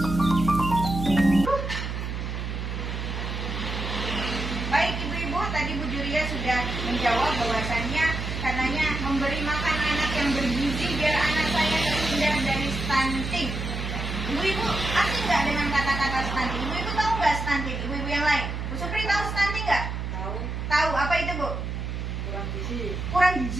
Baik ibu-ibu, tadi Bu Julia sudah menjawab bahwasannya karenanya memberi makan anak yang bergizi biar anak saya terhindar dari stunting. Ibu-ibu asing nggak dengan kata-kata stunting? Ibu-ibu tahu nggak stunting? Ibu-ibu yang lain, Bu Supri tahu stunting nggak? Tahu. Tahu. Apa itu Bu? Kurang gizi. Kurang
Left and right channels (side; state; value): right; noise; hum, 4 dB below the sound